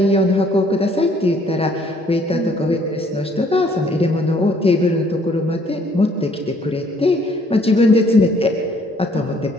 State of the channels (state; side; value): normal; both; correlation 0.62